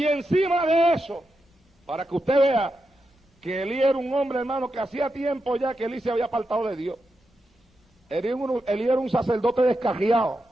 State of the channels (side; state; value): both; normal; correlation 0.87